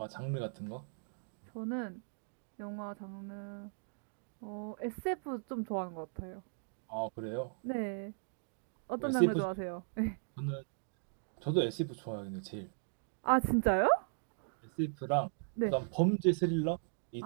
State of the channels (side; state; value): left; silent; digital silence